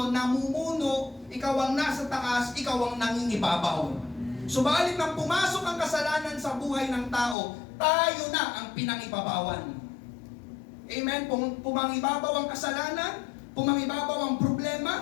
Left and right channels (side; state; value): right; drops out; at 7.4 s